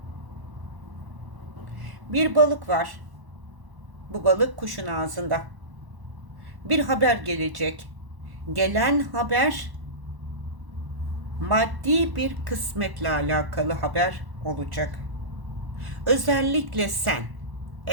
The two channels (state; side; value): late; left; 1.1 ms